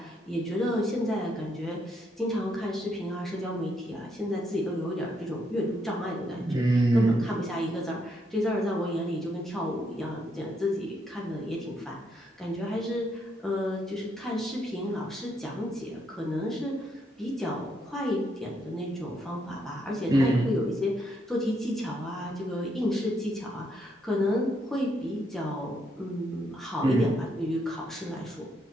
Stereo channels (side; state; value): both; normal; correlation 0.75